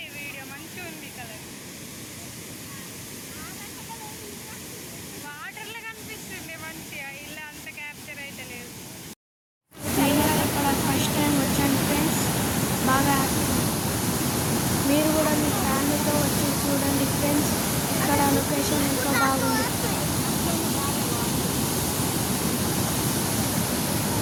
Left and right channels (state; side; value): identical; both; correlation 1.00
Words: బాగా మీరు కూడా మీ ఫ్యామిలీతో వచ్చి చూడండి ఫ్రెండ్స్, ఇక్కడ లొకేషన్ ఎంతో బాగుంది.